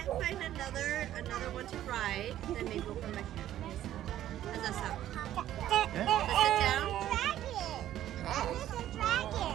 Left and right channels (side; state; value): left; quieter; 12.5 dB